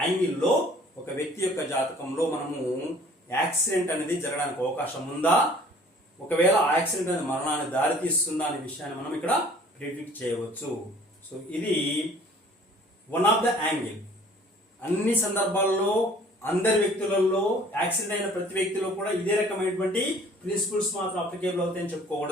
యాంగిల్లో ఒక వ్యక్తి యొక్క జాతకంలో మనము యాక్సిడెంట్ అనేది జరగడానికి అవకాశం ఉందా, ఒకవేళ యాక్సిడెంట్ అనేది మరణాన్ని దారితీస్తుందా అనే విషయాన్ని మనం ఇక్కడ ప్రిడిక్ట్ చేయవచ్చు. సో ఇది వన్ ఆఫ్ ద యాంగిల్. అన్ని సందర్భాల్లో అందరి వ్యక్తులలో యాక్సిడెంట్ అయిన ప్రతి వ్యక్తిలో కూడా ఇదే రకమైనటువంటి ప్రిన్సిపల్స్ మాత్రం అప్లికేబుల్ అవుతాయని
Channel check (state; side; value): normal; both; correlation 0.52